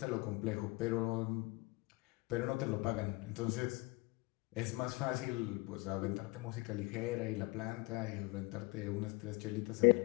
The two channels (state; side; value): quieter; right; 25.4 dB